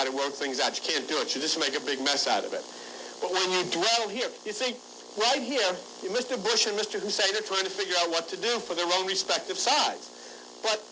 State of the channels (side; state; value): both; identical; correlation 1.00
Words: to work things out. You can't do it. You just make a big mess out of it. But when you dwell here, you see, right here, Mr. Bush and Mr. Hussein are trying to figure out what to do for their own respective sides. But